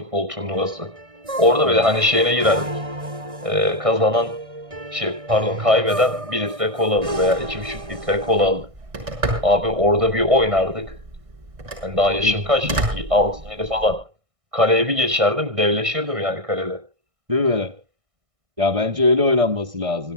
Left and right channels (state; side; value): late; left; 1.6 ms